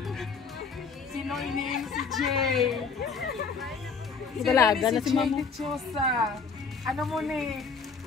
Sino iniin si Jay? Dalaga na si mama. Dichosa. Ano mo ni?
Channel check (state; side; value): quieter; right; 5.2 dB